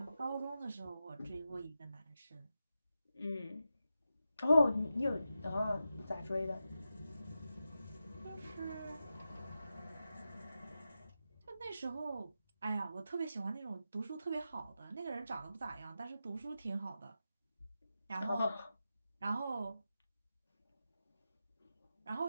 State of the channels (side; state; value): both; inverted; correlation -0.90